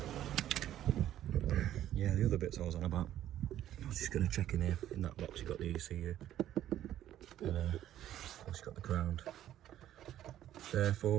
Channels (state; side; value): quieter; left; 12.1 dB